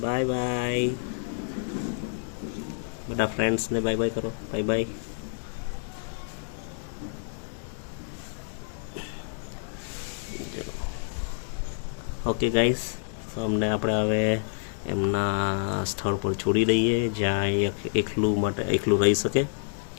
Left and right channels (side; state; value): right; silent; digital silence